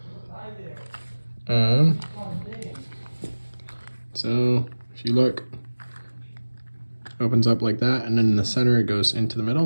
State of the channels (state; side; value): inverted; both; correlation -1.00